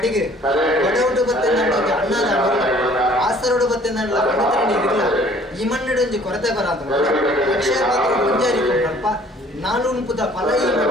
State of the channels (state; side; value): normal; both; correlation 0.55